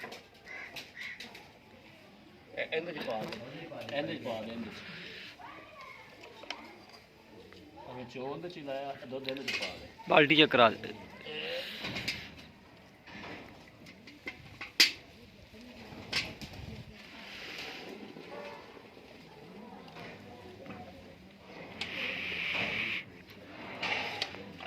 ਇਹਦੇ ਚ ਪਾ ਦੇ, ਇਹਦੇ ਚ ਪਾ ਦੇ, ਇਹਦੇ ਚ ਅਗੇ ਚੋਲ ਦੇ ਚ ਲਾਇਆ ਦੁੱਧ ਇਹਦੇ ਚ ਪਾ ਦੇ। ਬਾਲਟੀ ਚ ਕਰਾ ਦੇ।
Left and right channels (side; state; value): both; identical; correlation 1.00